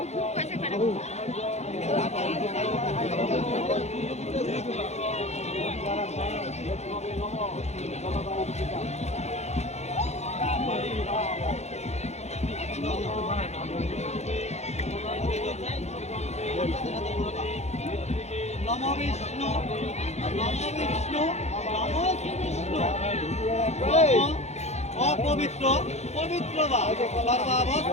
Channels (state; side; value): late; right; 0.32 ms